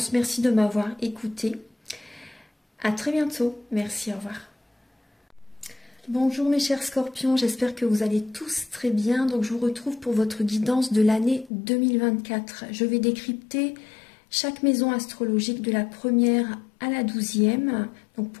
Merci de m'avoir écouté. À très bientôt. Merci, au revoir. Bonjour mes chers scorpions, j'espère que vous allez tous très bien. Donc je vous retrouve pour votre guidance de l'année 2024. Je vais décrypter chaque maison astrologique de la première à la 12e, donc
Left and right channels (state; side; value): drops out; right; at 11.5 s